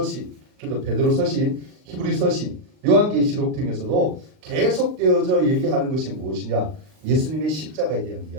그리고 베드로서신, 히브리서신, 요한계시록 등에서도 계속되어져 얘기하는 것이 무엇이냐? 예수님의 십자가에 대한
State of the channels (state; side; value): late; left; 39 ms